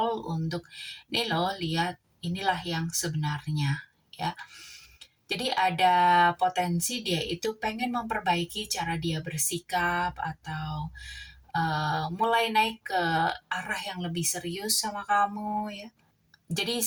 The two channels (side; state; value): both; identical; correlation 1.00